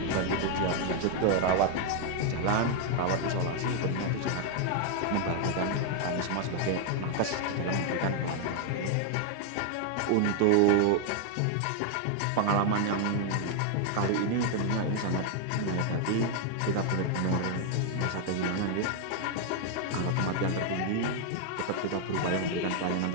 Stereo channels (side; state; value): both; different; correlation 0.00